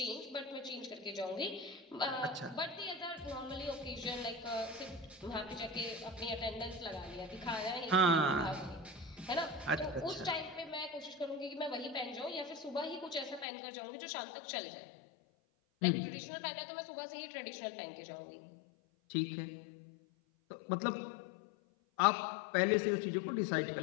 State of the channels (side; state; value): right; drops out; at 13.5 s